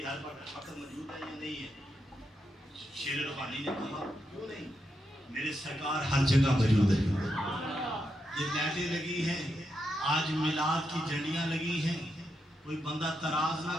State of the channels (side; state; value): both; normal; correlation 0.84